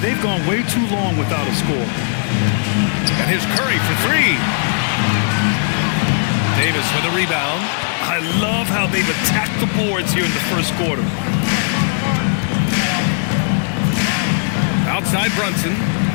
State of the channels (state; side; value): silent; right; digital silence